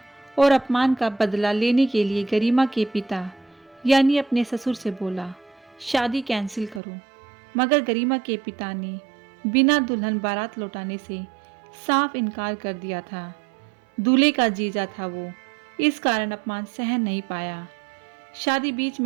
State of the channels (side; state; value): left; drops out; at 6.8 s